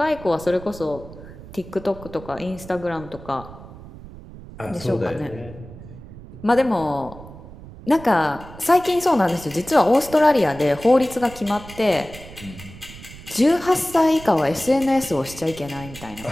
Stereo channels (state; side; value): noise; right; rumble, 16 dB below the sound